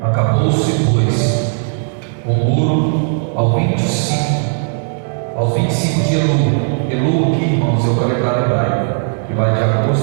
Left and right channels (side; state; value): left; silent; 69 dB below the other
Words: Acabou-se, pois, o muro ao 25 de Elul, que, irmãos, é o calendário hebraico, que vai de